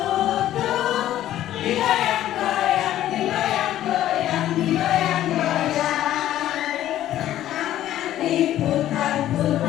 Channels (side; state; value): right; quieter; 12.9 dB